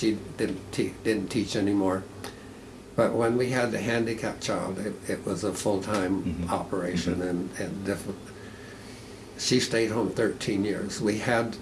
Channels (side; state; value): both; identical; correlation 1.00